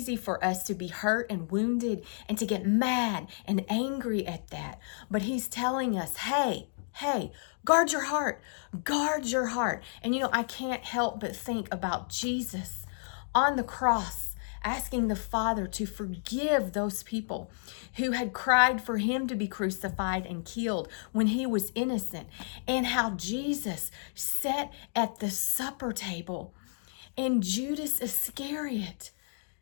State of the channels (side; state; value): right; silent; digital silence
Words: for us to be hurt and wounded and to get mad and angry at that. But He's telling us, hey, guard your heart. Guard your heart. And I can't help but think about Jesus on the cross, asking the Father to forgive those people who had cried for Him to be crucified and killed when He was innocent, and how Jesus sat at the supper table and Judas Iscariot